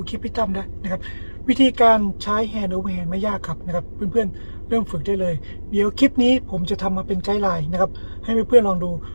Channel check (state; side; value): inverted; both; correlation -1.00